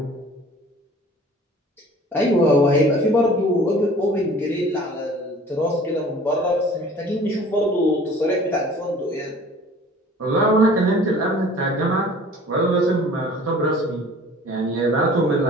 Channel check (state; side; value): normal; both; correlation 0.48